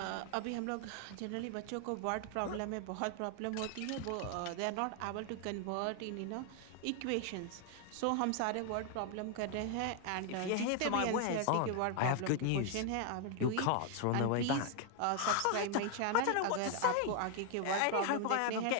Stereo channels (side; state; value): both; different; correlation 0.00